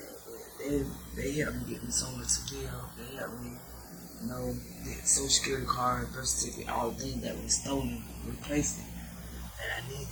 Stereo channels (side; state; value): both; identical; correlation 1.00